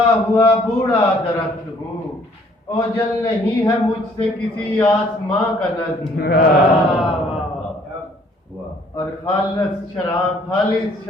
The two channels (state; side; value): normal; both; correlation 0.61